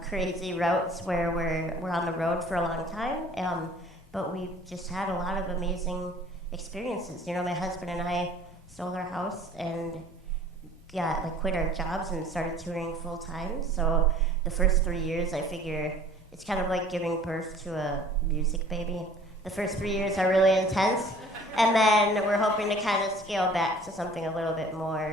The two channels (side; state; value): both; normal; correlation 0.50